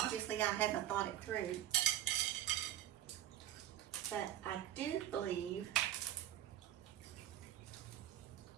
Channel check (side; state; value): left; quieter; 12.2 dB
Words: I haven't thought it through, but I do believe